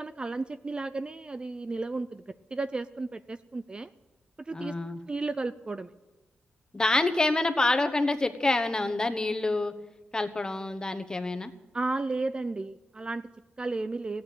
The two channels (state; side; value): normal; both; correlation 0.90